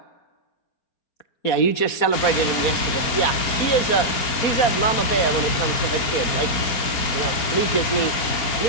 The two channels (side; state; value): right; late; 4.4 ms